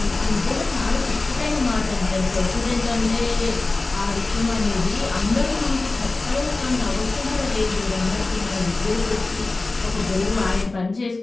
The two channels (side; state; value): right; quieter; 3.3 dB